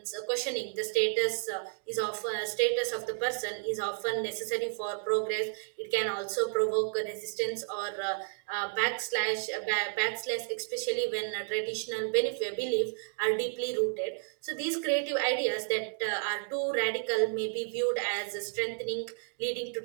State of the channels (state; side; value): silent; left; 57 dB below the other